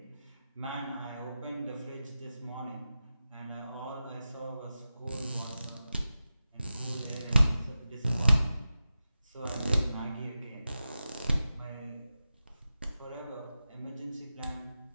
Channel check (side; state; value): both; inverted; correlation -0.93